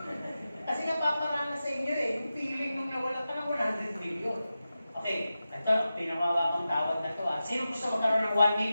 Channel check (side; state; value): both; inverted; correlation -0.93